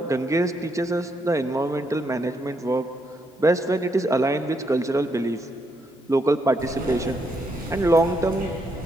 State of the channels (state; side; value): normal; both; correlation 0.77